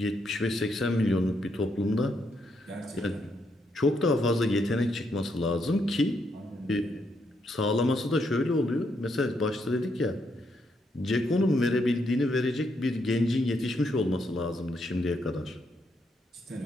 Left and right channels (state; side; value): normal; both; correlation 0.77